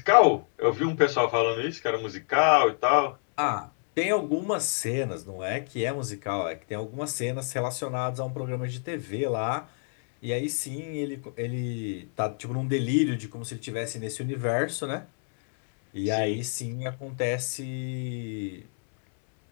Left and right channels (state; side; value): silent; right; 60 dB below the other